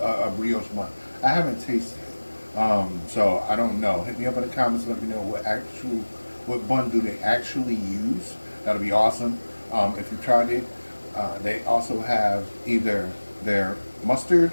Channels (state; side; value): inverted; both; correlation -1.00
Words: brioche bun. I haven't tasted it. So I don't know. Hit me up in the comments. Let me know what bun do they actually use. That'll be awesome. If you tried it, they also have either their mustard